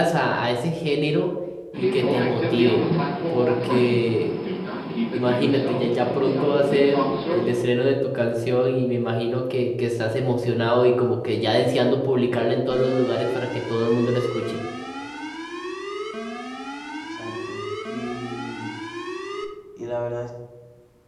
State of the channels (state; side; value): identical; both; correlation 1.00